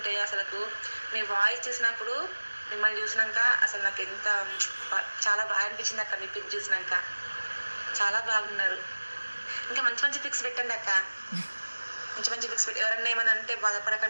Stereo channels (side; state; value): both; inverted; correlation -1.00